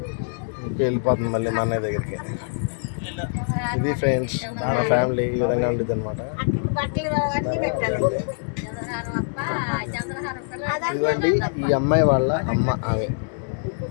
వెళ్ళిపోతుంది మళ్ళీ మా అన్నయ్య దగ్గరికి. ఇది ఫ్రెండ్స్ మన ఫ్యామిలీ ఈ విధంగా ఉండేది అనమాట. ఇదిగోండి ఈ అమ్మాయి వాళ్ళ అమ్మ, ఆమె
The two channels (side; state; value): right; silent; digital silence